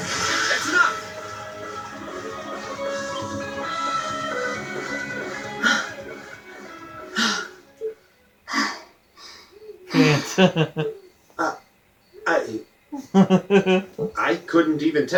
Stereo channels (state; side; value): identical; both; correlation 1.00